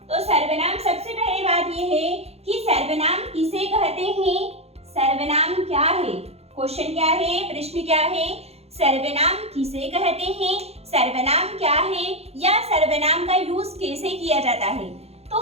तो सर्वनाम, सबसे पहले बात यह है कि सर्वनाम किसे कहते हैं? सर्वनाम क्या है? क्वेश्चन क्या है, प्रश्न क्या है? सर्वनाम किसे कहते हैं, सर्वनाम क्या है, या सर्वनाम का यूज कैसे किया जाता है? तो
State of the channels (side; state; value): left; late; 0.30 ms